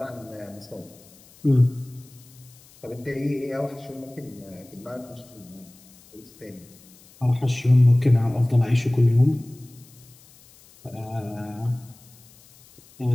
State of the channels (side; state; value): left; noise; hiss, 25 dB below the sound